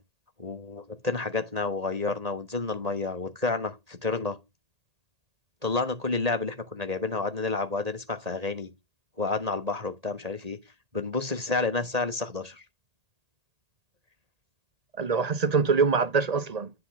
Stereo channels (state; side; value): late; left; 1.8 ms